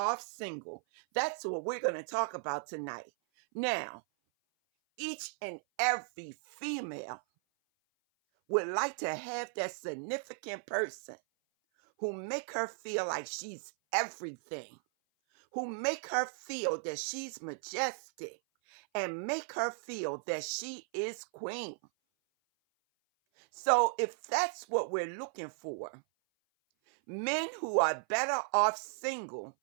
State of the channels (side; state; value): left; silent; 54 dB below the other